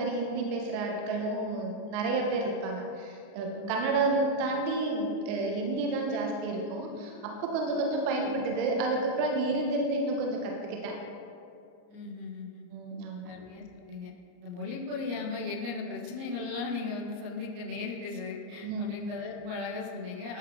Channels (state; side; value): late; left; 34 ms